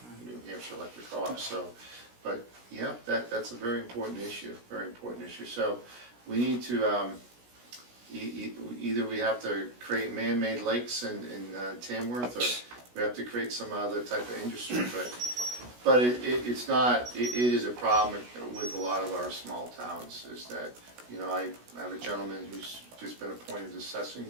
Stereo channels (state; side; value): late; left; 16 ms